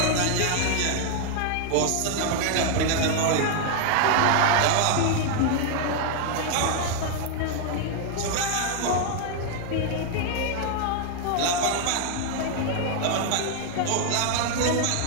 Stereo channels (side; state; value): both; different; correlation 0.00